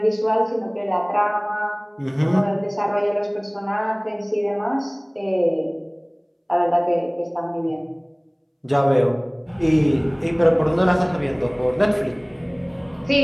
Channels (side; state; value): both; identical; correlation 1.00